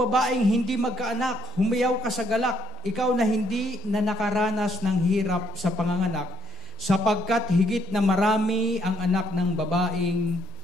hindi magkaanak, humiyaw ka sa galak, ikaw na hindi na nakaranas ng hirap sa panganganak, sapagkat higit na marami ang anak ng babaeng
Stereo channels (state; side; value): normal; both; correlation 0.70